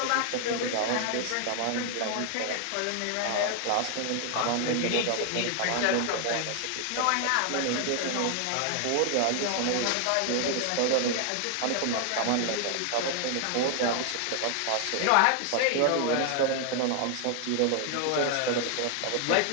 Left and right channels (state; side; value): different; both; correlation 0.00